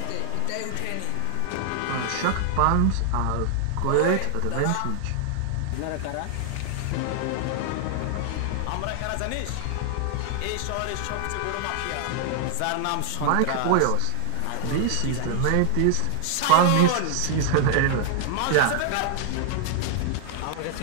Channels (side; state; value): both; different; correlation 0.00